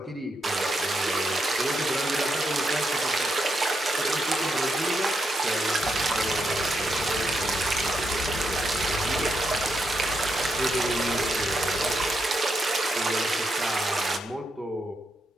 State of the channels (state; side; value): normal; both; correlation 0.82